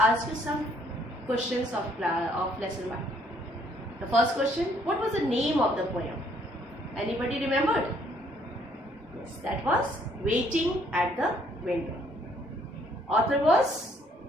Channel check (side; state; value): both; normal; correlation 0.65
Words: you some questions of lesson 1. The first question, what was the name of the poem? Anybody remembered? Yes, that was Waiting at the Window. Author was